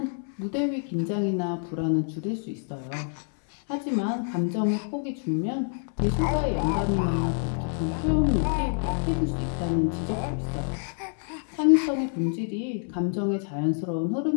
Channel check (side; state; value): right; silent; 60 dB below the other